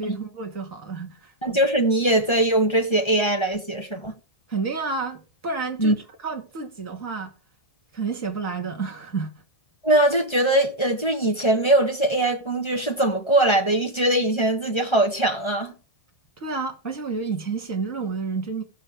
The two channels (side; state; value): right; late; 1.3 ms